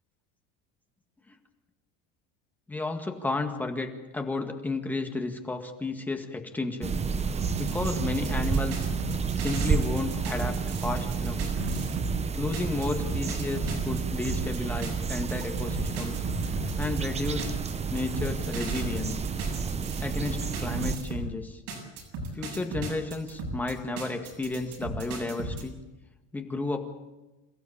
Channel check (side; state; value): both; normal; correlation 0.66